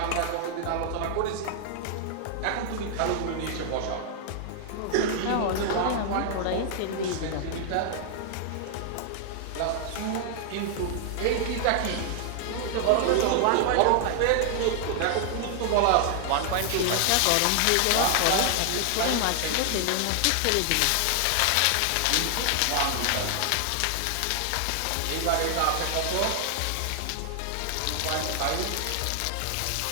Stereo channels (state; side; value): different; both; correlation 0.00